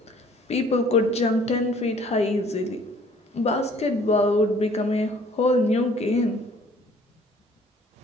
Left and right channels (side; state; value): both; normal; correlation 0.56